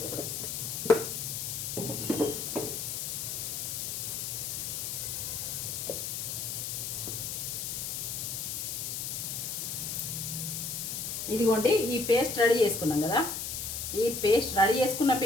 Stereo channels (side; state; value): left; noise; hiss, 3 dB below the sound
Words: ఇదిగోండి ఈ పేస్ట్ రెడీ చేసుకున్నాం కదా, ఈ పేస్ట్ రెడీ చేసుకున్న